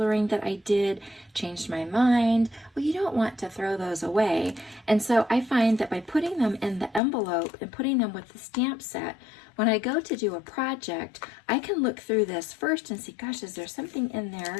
that I did, changed my mind. Well, you don't want to throw those away. And so I find that by putting them in the envelope and putting them with the stamp set, when I go to do a project, I can look through this first and see, gosh, is there something in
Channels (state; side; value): drops out; right; at 7.0 s